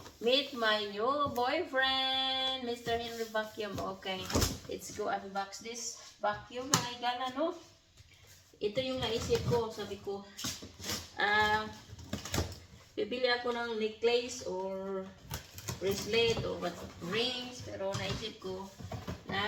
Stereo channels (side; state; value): both; identical; correlation 1.00